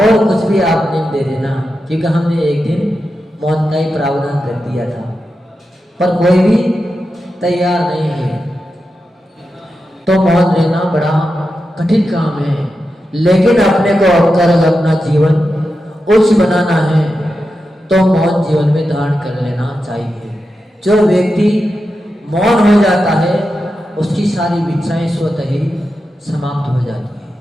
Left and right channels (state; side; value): normal; both; correlation 0.89